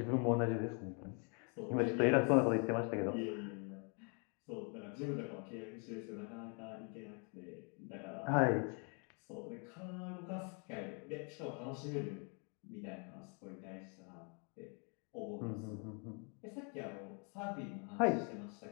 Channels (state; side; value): quieter; right; 36.6 dB